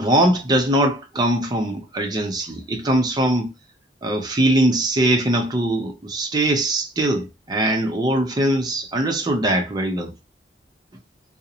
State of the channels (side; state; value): both; normal; correlation 0.52